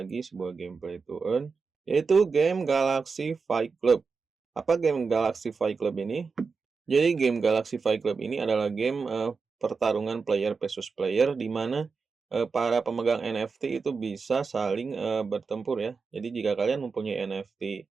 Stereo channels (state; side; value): quieter; left; 4.9 dB